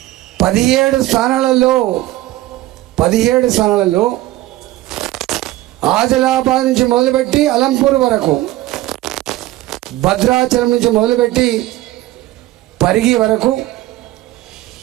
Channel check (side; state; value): left; quieter; 16.3 dB